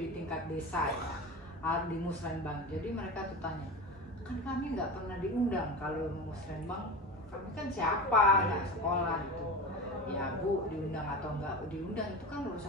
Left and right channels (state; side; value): normal; both; correlation 0.27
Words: tingkat desa ya, di Musrenbang. Jadi mereka tuh tanya, kan kami nggak pernah diundang kalau Musrenbang, kami kan siapa, nggak sekolah gitu. Ya Bu, diundang atau nggak diundang itu kan